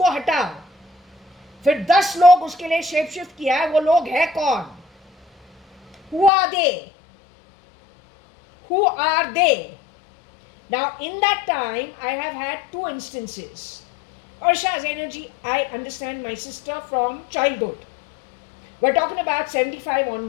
हटाओ, फिर 10 लोग उसके लिए shape shift किया है, वो लोग है कौन? Who are they? Who are they? Now, in that time, I have had two instances. Ursha's energy, I understand my sister from childhood. We're talking about 75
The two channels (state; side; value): drops out; right; at 6.3 s